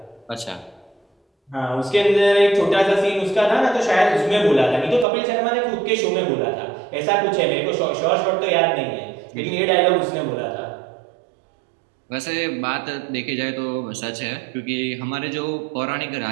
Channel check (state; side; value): drops out; left; at 5.1 s